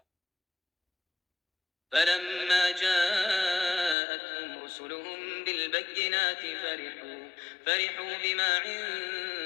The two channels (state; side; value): drops out; right; at 4.0 s